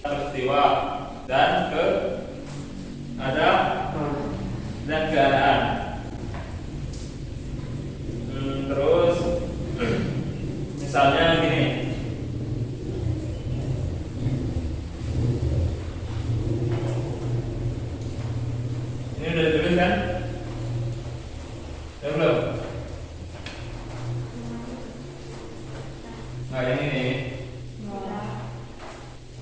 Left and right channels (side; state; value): both; identical; correlation 1.00